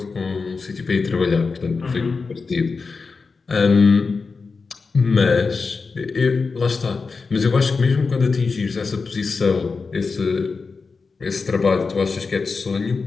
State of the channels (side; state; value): right; quieter; 4.5 dB